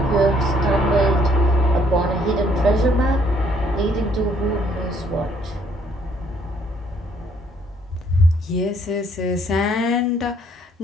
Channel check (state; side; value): normal; both; correlation 0.65